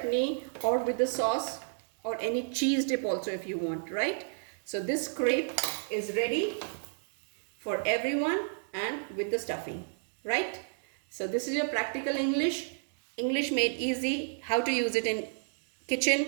or with the sauce, or any cheese dip also if you want, right? So this crepe is ready for everyone, and with the stuffing, right? So this is your practical English made easy, how to use it in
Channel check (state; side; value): silent; left; 57 dB below the other